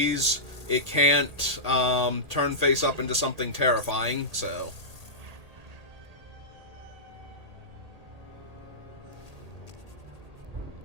It can't turn face up into something terrifying, so.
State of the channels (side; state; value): left; late; 1.8 ms